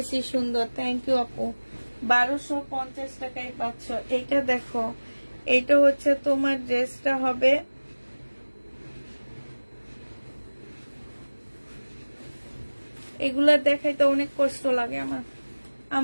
সুন্দর। থ্যাংক ইউ আপু। 1250 টাকায় পাচ্ছ। এইটা দেখো, এইটা হচ্ছে তোমার ড্রেসটা হবে এগুলা দেখাইতে অনেক কষ্ট লাগে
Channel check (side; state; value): both; inverted; correlation -1.00